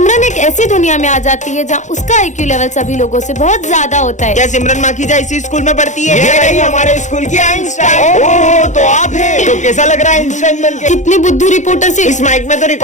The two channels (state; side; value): late; right; 0.35 ms